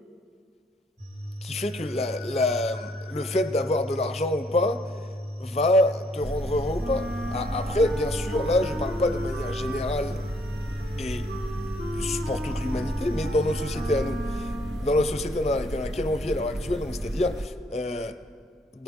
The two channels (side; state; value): both; normal; correlation 0.67